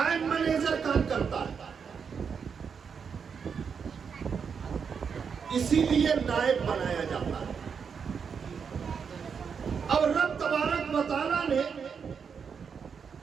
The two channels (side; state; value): left; quieter; 6.4 dB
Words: منیجر کام کرتا ہے. اسی لیے نائب بنایا جاتا ہے. اب رب تبارک و تعالیٰ نے